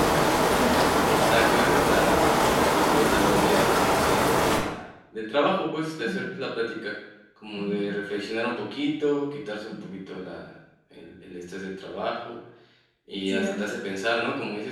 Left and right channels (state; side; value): identical; both; correlation 1.00